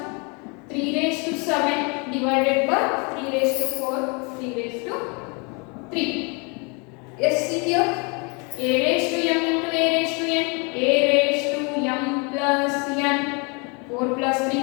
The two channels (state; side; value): quieter; right; 32.2 dB